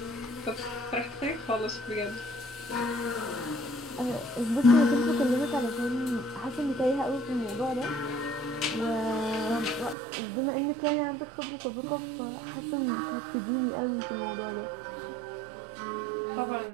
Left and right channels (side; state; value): left; drops out; at 10.0 s